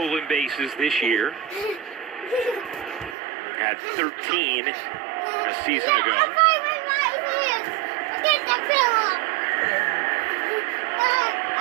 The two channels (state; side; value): drops out; left; at 3.2 s